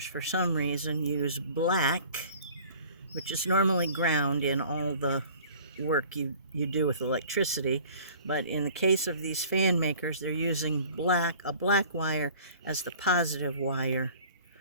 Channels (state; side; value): inverted; both; correlation -0.48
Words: for some reason, use black, which is normally ground in all the work you do with electricity. But in the case of these fan makers, they're using a black wire as the positive wire.